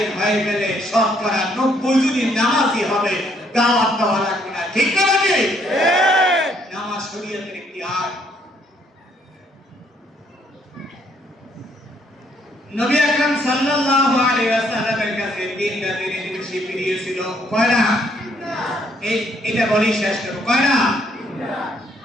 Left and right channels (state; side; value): normal; both; correlation 0.68